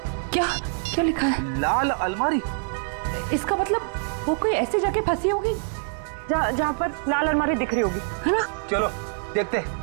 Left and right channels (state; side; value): silent; left; 62 dB below the other